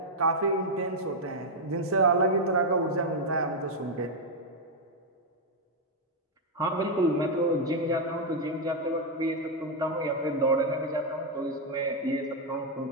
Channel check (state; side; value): normal; both; correlation 0.01